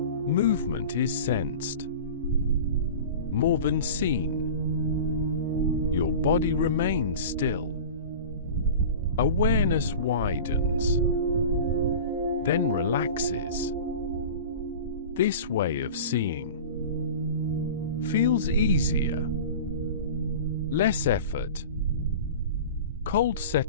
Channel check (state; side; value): inverted; both; correlation -0.35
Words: Movement is sensed more than seen. Your body remains still. Awareness widens, then relaxes. This way of seeing feels easier, less effort. Cold